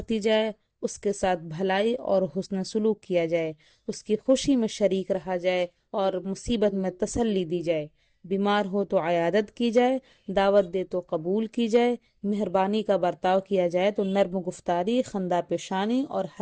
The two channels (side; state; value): both; identical; correlation 1.00